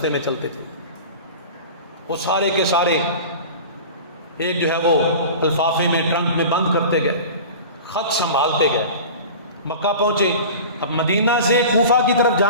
میں چلتے تھے. وہ سارے کے سارے ایک جو ہے وہ لفافے میں، ٹرنک میں بند کرتے گئے، خط سنبھالتے گئے. مکہ پہنچے. اب مدینہ سے کوفہ کی طرف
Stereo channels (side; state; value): both; inverted; correlation -0.36